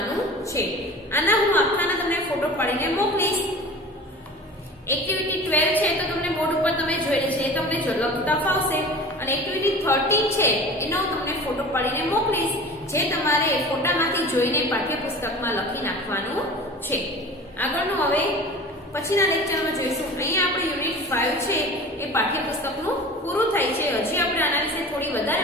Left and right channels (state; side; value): normal; both; correlation 0.38